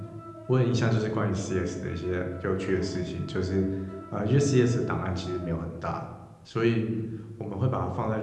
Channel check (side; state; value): both; identical; correlation 1.00